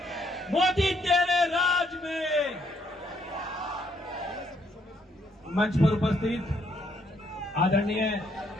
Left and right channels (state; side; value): normal; both; correlation 0.71